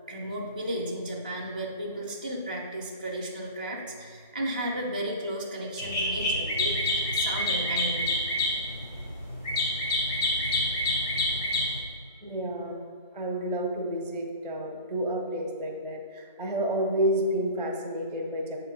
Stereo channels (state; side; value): inverted; both; correlation -0.30